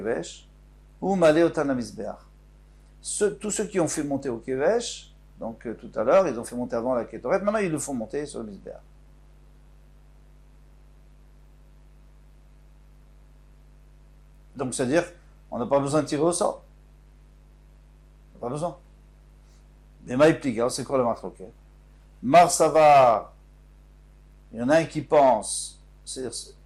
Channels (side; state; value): both; identical; correlation 1.00